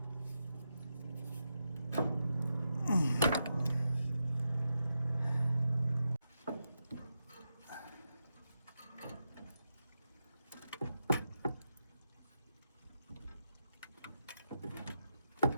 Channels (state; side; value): inverted; both; correlation -0.86